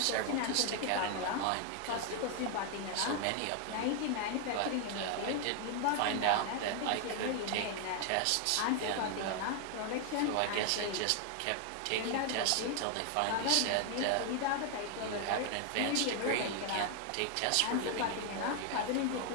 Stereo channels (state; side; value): different; both; correlation 0.00